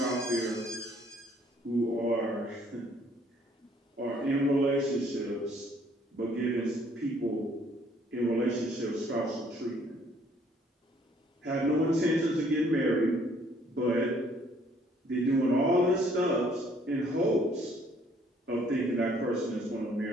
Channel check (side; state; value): both; normal; correlation 0.62